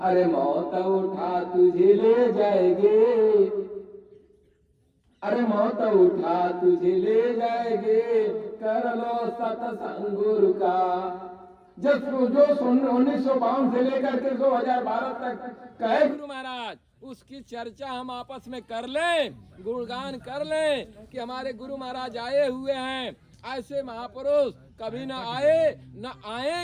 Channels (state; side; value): identical; both; correlation 1.00